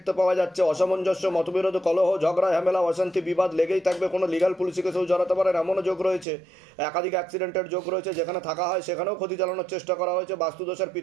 পাওয়া যাচ্ছে। অসামঞ্জস্য, মতবিরোধ, কলহ, ঝগড়া, ঝামেলা, অশান্তি, বিবাদ লেগেই থাকবে। কোনো লিগাল পুলিশে কেউ জড়াতে পারেন এমনও যোগ রয়েছে। একাধিক অ্যাক্সিডেন্টের যোগ রয়েছে, যেখানে থাকা হয় সেখানেও ক্ষতি চালানোর চেষ্টা করা হয়েছে। বাস্তুদোষ আর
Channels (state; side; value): drops out; left; at 6.2 s